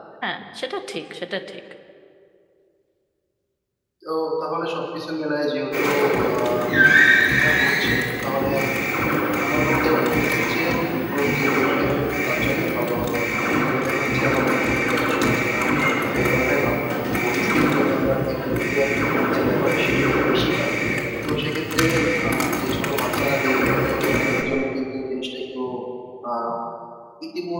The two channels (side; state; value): both; identical; correlation 1.00